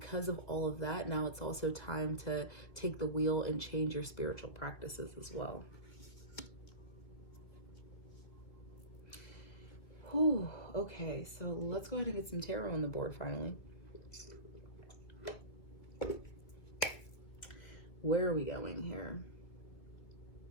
of all of that, now it's also time to take the wheel and change your spiritual practices as well. Whew, okay, so let's go ahead and get some tarot on the board finally. Where are we going here?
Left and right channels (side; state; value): right; late; 2.3 ms